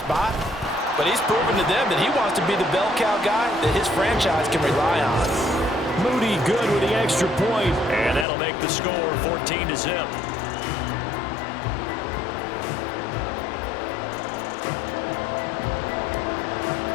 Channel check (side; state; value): right; drops out; at 8.2 s